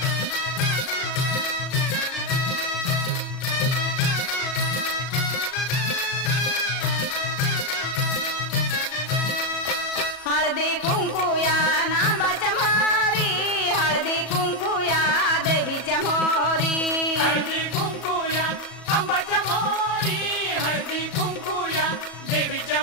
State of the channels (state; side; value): late; right; 37 ms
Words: हळदी कुंकुया नांबाच्या मोरी, हळदी कुंकुया देवीच्या मोरी, हळदी कुंकुया अंबाच्या मोरी, हळदी कुंकुया देवीच्या